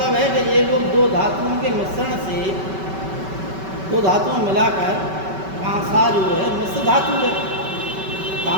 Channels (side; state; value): left; late; 5.2 ms